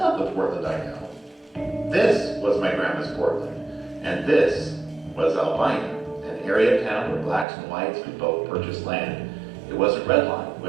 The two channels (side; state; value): left; drops out; at 7.5 s